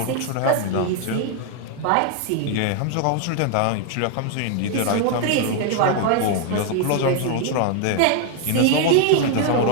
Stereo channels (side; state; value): both; different; correlation 0.00